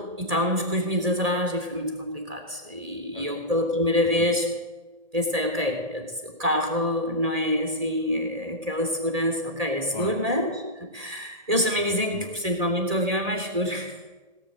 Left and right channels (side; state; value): left; late; 1.8 ms